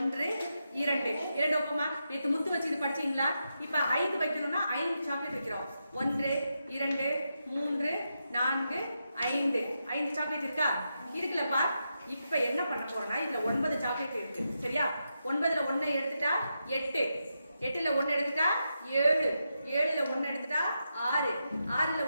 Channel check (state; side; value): inverted; both; correlation -0.85